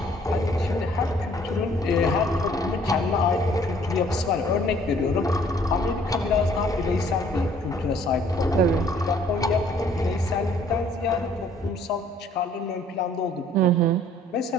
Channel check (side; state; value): both; normal; correlation 0.59